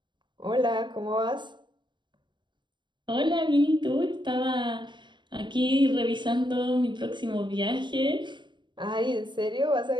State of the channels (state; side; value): late; left; 0.22 ms